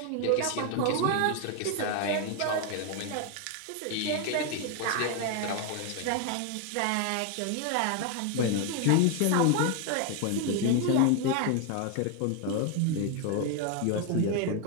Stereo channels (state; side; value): different; both; correlation 0.01